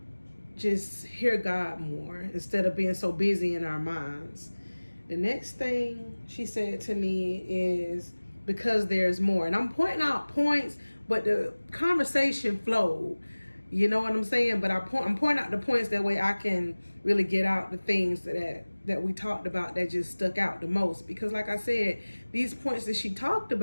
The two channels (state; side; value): inverted; both; correlation -1.00